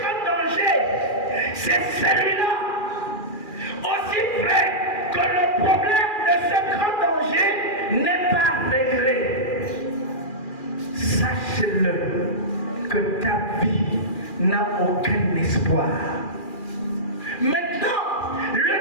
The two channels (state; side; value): late; right; 2.4 ms